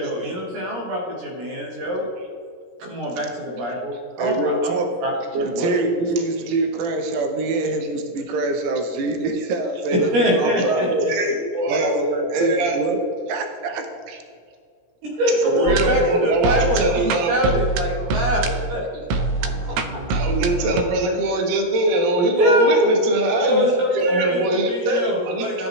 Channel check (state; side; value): late; left; 17 ms